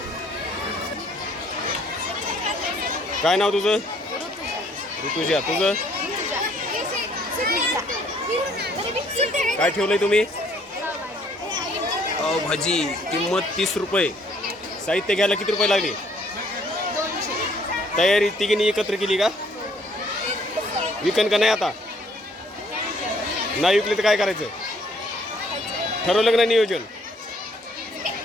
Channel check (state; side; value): normal; both; correlation 0.63